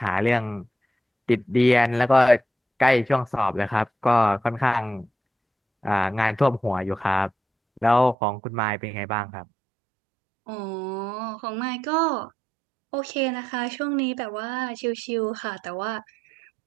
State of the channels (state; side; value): drops out; left; at 8.2 s